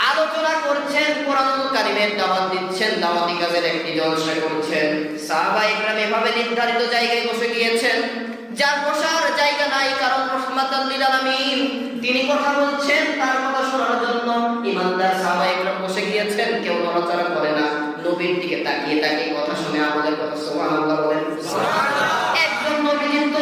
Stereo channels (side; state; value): both; identical; correlation 1.00